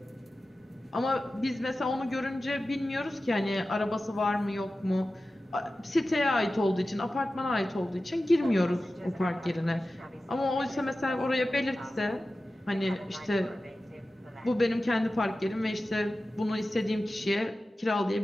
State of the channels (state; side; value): normal; both; correlation 0.94